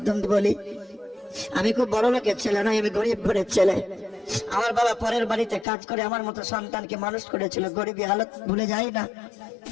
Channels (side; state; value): right; drops out; at 5.7 s